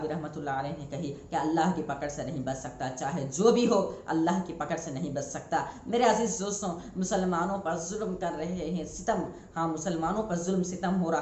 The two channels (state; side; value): identical; both; correlation 1.00